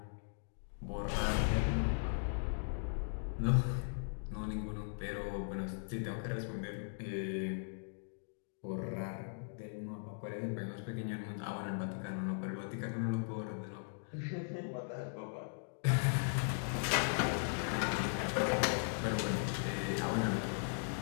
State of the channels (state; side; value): silent; right; digital silence